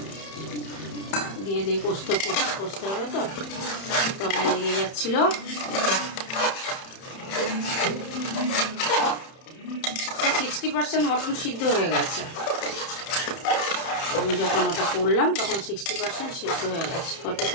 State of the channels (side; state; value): right; late; 31 ms